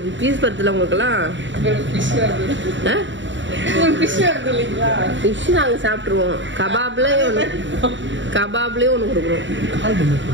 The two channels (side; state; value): left; late; 0.54 ms